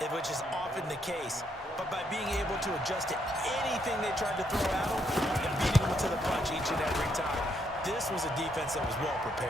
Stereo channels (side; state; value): both; normal; correlation 0.75